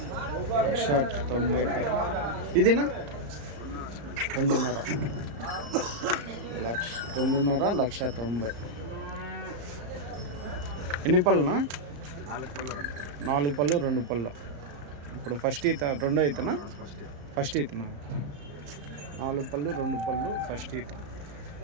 1,90,000. ఇదినా 2,500, 1,90,000. ఎన్ని పళ్ళునా? 4 పళ్ళు, 2 పళ్ళు. ఇప్పుడు ఫస్ట్ ఈత రెండో ఈతనా? ఫస్ట్ ఈతనా? 4 పళ్ళు, 2 పళ్ళు ఫస్ట్ ఈత.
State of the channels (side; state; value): left; late; 34 ms